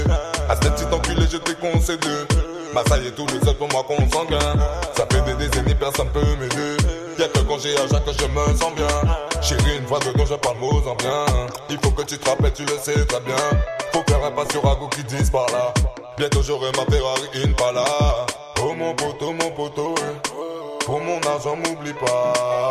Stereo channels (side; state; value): both; identical; correlation 1.00